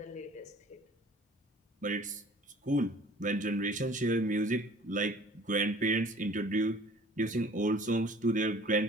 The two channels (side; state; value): both; normal; correlation 0.50